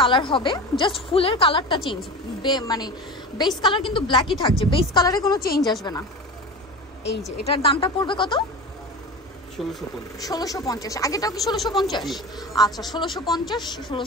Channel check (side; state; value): both; normal; correlation 0.30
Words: হবে, জাস্ট ফুলের কালারটা চেঞ্জ, মানে বেস কালার কিন্তু ব্ল্যাকই থাকছে, বেস কালারে কোনো চেঞ্জ আসবে না। এই যে এটার দামটা পড়বে কত? 1650। আগেটাও কি 1650? আচ্ছা